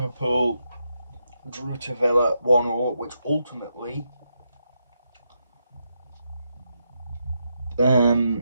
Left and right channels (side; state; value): both; inverted; correlation -0.83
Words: drew to Villa 1-1, which ultimately